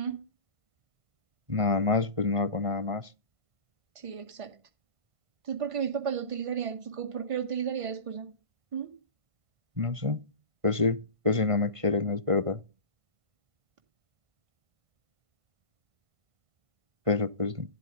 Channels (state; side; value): late; left; 1.5 ms